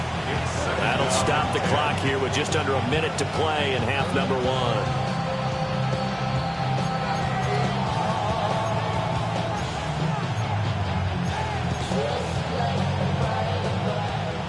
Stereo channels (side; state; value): both; identical; correlation 1.00